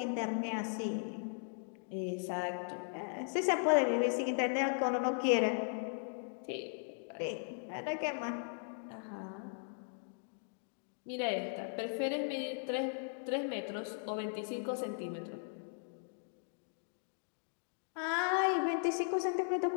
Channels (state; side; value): silent; right; digital silence